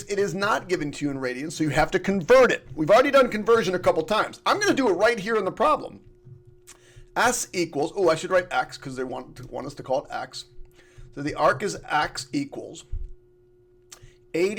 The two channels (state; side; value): identical; both; correlation 1.00